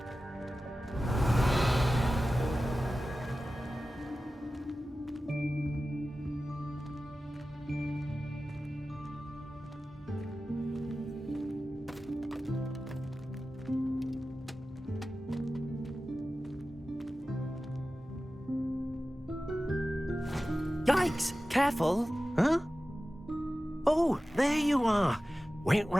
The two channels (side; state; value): both; normal; correlation 0.95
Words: Yikes! Careful! Huh? Oh, there you are. Wait